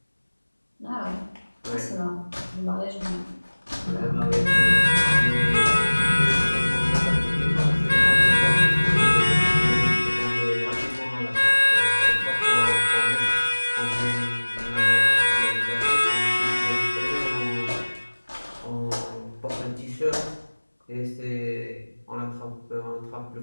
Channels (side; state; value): both; inverted; correlation -1.00